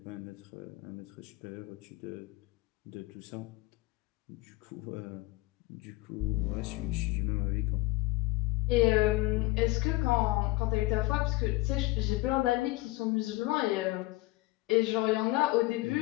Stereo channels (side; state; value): right; quieter; 20.3 dB